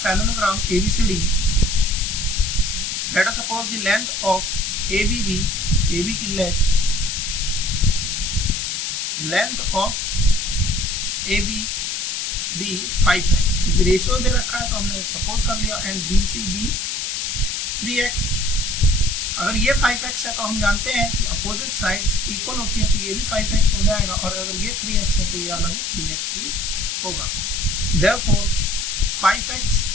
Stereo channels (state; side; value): noise; left; hiss, 2 dB below the sound